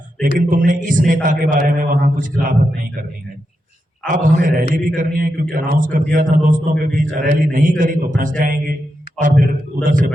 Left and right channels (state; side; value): normal; both; correlation 0.86